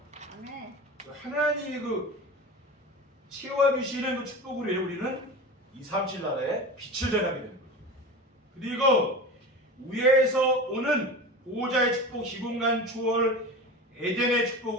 아멘. 하나님이 그 채워주시는 그 축복으로 인해 우리는 237 나라의 빛을 전하게 되는 거죠. 그리고 위에서 오는 보호자의 축복, 시공간 초월, 에덴의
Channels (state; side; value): normal; both; correlation 0.30